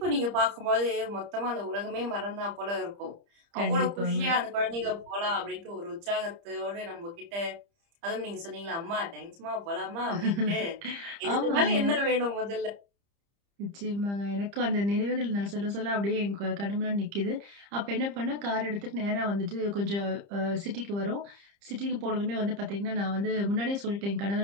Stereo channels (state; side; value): late; left; 30 ms